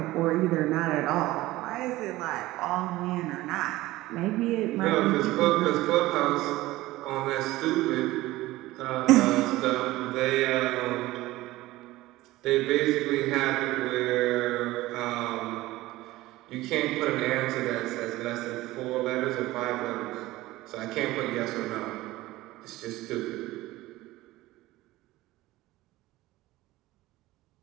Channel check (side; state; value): left; quieter; 17.8 dB